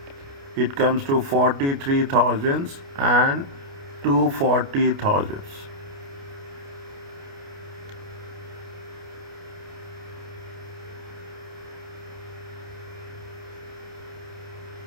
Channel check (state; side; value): late; left; 29 ms